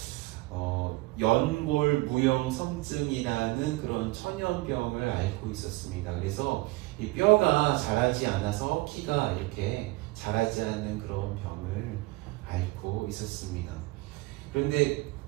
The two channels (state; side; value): quieter; left; 21.8 dB